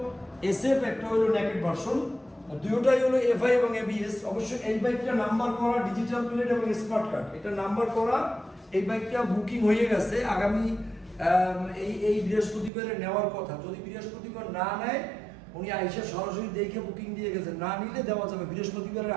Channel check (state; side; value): drops out; left; at 12.7 s